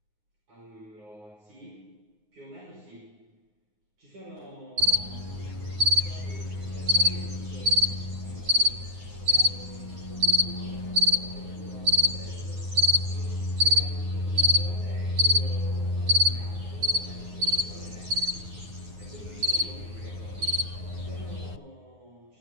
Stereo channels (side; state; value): left; late; 9.6 ms